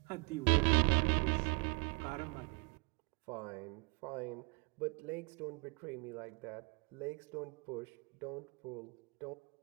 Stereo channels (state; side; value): quieter; left; 32.5 dB